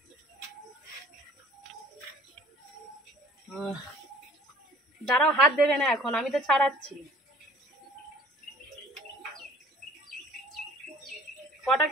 দাঁড়াও, হাত দেবে না এখন, আমি তো ছাড়াচ্ছি। কটা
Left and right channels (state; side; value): normal; both; correlation 0.50